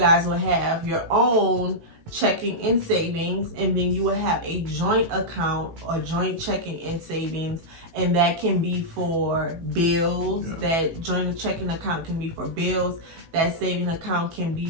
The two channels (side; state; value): left; late; 18 ms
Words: will have your own checking and savings, and then you will have a joint account or joint checking and savings, and that can be for bills. That joint checking account can be for bills. That saving account can